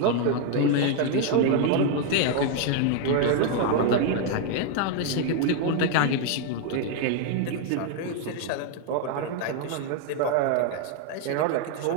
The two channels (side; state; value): both; different; correlation 0.00